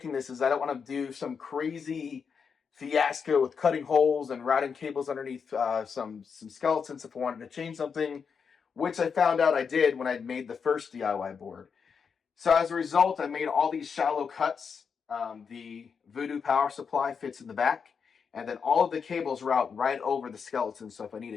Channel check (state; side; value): quieter; right; 6.2 dB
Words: this is I don't want to do some crazy fiasco with cutting holes and routing cables underneath some skeletons if I wanted to change something, which I found out I did when I made the first DIY board. So as a result, I made all these shallow cuts. The Voodoo power supply fits in the back, and then all of the cables route right over the skeleton. So if I need